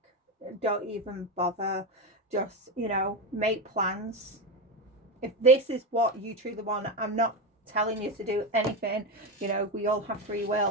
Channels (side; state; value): both; normal; correlation 0.16